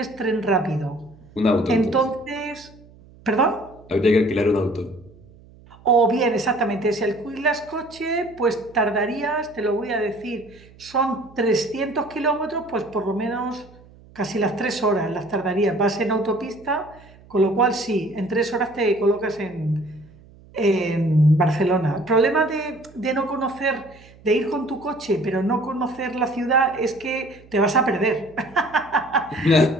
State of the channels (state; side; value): noise; right; hum, 24 dB below the sound